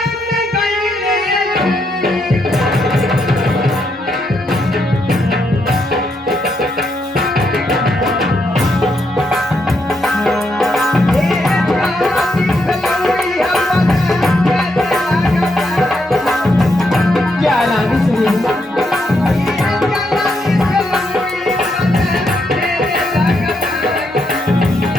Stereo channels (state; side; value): normal; both; correlation 0.79